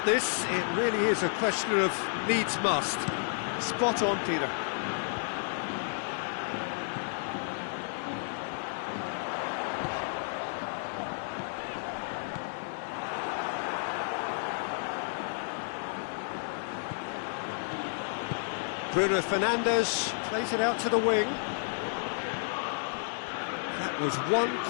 this. It really is a question of needs must. Spot on, Peter. Bruno Fernandes plays it out to the wing. That was one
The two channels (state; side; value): silent; right; digital silence